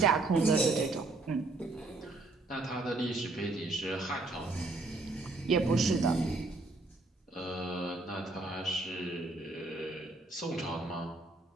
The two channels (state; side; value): quieter; left; 3.2 dB